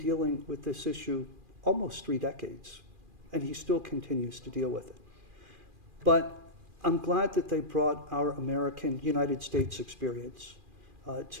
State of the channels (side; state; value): left; late; 2.4 ms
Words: with this issue almost 3 decades, and he still continues to deal with it. But I'm glad that they brought our American United States experience